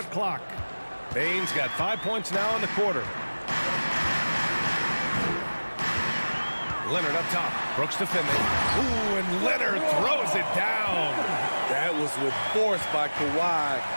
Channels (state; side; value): inverted; both; correlation -1.00